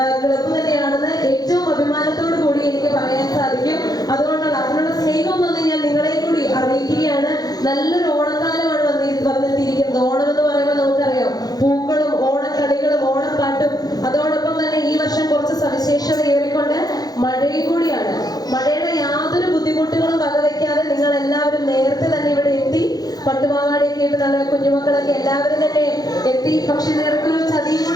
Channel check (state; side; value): late; right; 0.19 ms